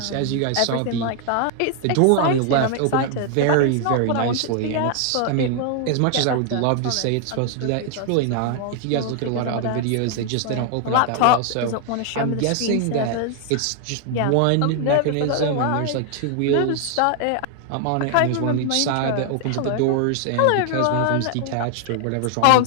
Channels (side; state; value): both; different; correlation 0.00